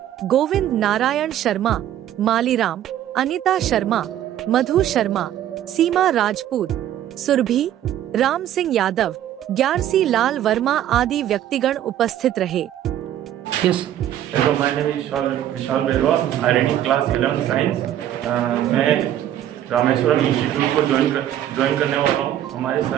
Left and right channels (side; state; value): left; quieter; 11.7 dB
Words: गोविंद नारायण शर्मा, मालीराम, अनिता शर्मा, मधु शर्मा, सीमा राजपूत, सुरभि, राम सिंह यादव, ग्यारसी लाल वर्मा आदि व्यक्तिगण उपस्थित रहे। My name is Vishal Berwa, IIT class 11 science. मैं रामेश्वरम इंस्टीट्यूट को ज्वाइन करने वाला हूँ। हमारे